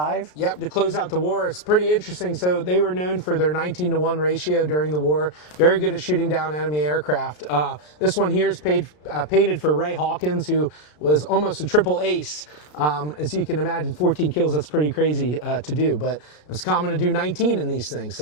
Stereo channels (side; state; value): right; late; 33 ms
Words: Yep, to close out the war. It's pretty interesting. So they were known for their 19-to-1 ratio during the war. Very good at shooting down enemy aircraft. This one here is painted for Ray Hawkins, who was almost a triple ace. As you can imagine, 14 kills, that's pretty crazy to do, but it was common to do 19 in these things.